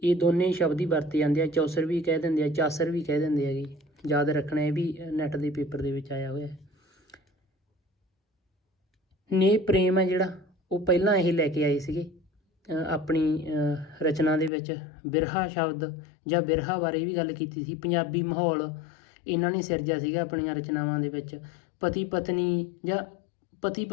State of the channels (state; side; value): drops out; right; at 14.5 s